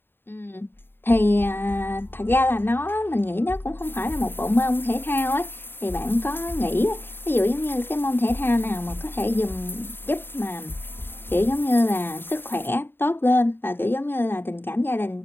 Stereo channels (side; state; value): right; late; 0.10 ms